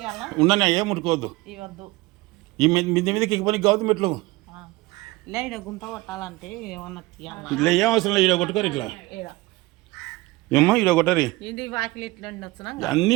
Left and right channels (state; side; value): quieter; left; 20.8 dB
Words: ఉండని ఏం ముట్టుకోవద్దు. ఈ మిద్ది మీదకి ఎక్కిపోయి కావద్దు మెట్లు. గుంత కొట్టాలంటే ఇట్లా ఏం అవసరం లేదు, ఈడ కొట్టుకోరు. ఇట్లా ఏమ్మా, ఈడ కొట్టరి. అన్నీ